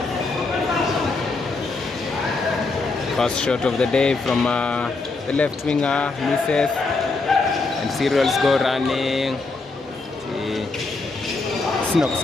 First shot of the day from the left winger, misses, and Cereals go running. Snox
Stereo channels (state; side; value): quieter; right; 3.7 dB